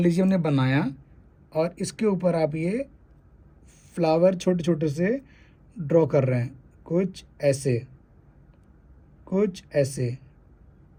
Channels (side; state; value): both; identical; correlation 1.00